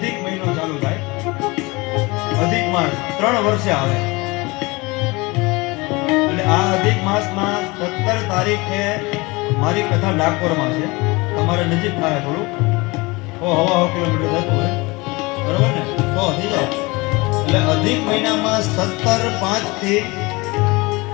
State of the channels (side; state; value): right; quieter; 24.3 dB